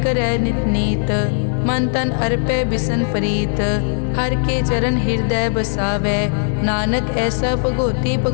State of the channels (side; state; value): right; silent; 55 dB below the other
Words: करै नित नीत, मन तन अर्पै बिसन प्रीत। हर के चरण हृदय बसावै, नानक ऐसा भगोती